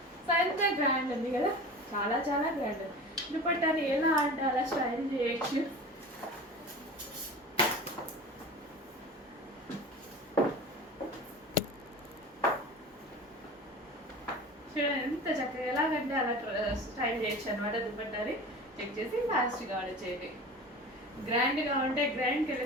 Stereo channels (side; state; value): both; normal; correlation 0.35